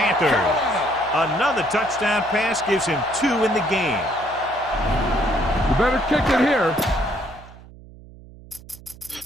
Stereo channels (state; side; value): noise; right; hum, 20 dB below the sound